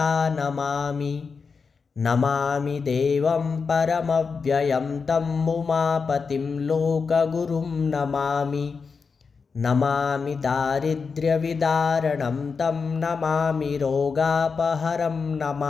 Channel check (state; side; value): quieter; right; 5.2 dB